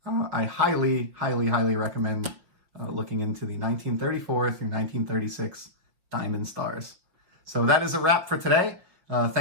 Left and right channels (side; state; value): left; late; 5.9 ms